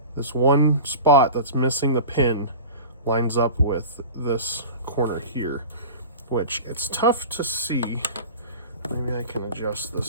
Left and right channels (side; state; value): both; inverted; correlation -0.33